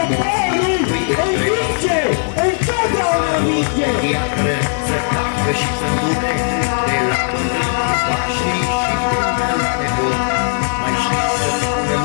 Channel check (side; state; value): right; silent; digital silence